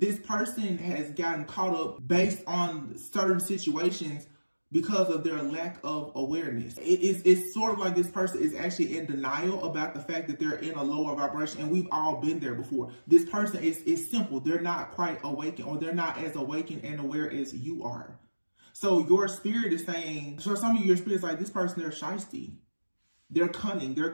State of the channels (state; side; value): inverted; both; correlation -1.00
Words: person has gotten caught up based on certain situations because of their lack of awareness. It's sort of like this person is actually in denial about the fact that they're in a lower vibration, and we've all been there before. This person is simple. They're not quite awakened, or they're not as awakened and aware as you are. So your spirit is saying, so some of your spirit's like, this person, they're shiesty, they're cunning, they're